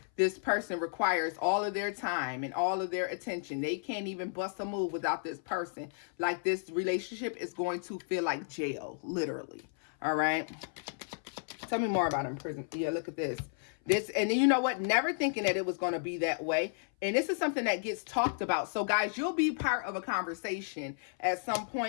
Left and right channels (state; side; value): silent; right; 56 dB below the other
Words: this person requires all of their time and all of their attention. They can't even bust a move without this person. Like, this relationship is going to feel like jail, literally. All right. Tell me more about in prison. Yeah, look at this. And then you know what? Never thinking that it was going to be that way. And this is something that gets talked about. So guys, you'll be part of a conversation at some